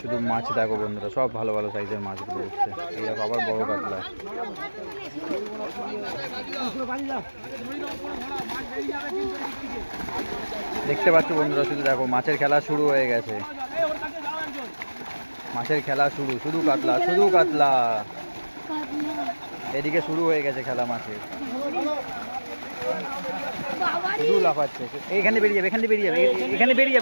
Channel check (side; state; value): both; inverted; correlation -1.00